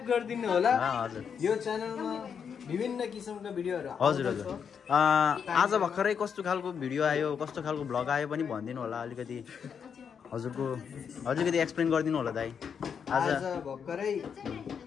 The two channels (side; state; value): right; quieter; 7.0 dB